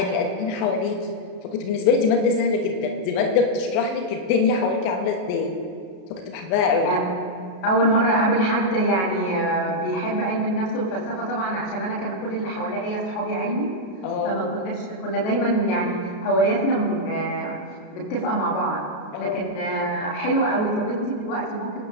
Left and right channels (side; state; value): right; late; 33 ms